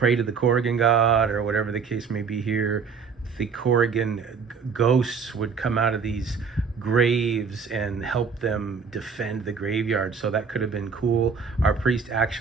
to the Corrigan god or whatever the case may be here, the Corrigan ghosts would come out of these graves and help them defend the graveyard. So that could have been cool. Our priest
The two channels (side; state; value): left; quieter; 5.7 dB